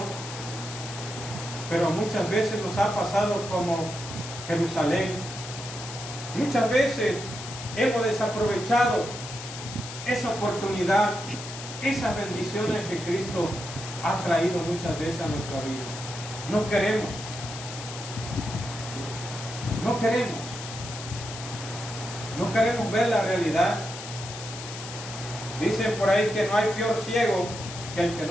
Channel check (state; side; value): noise; left; hiss, 10 dB below the sound